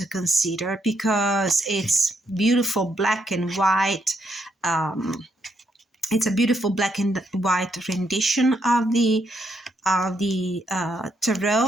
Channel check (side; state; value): both; normal; correlation 0.76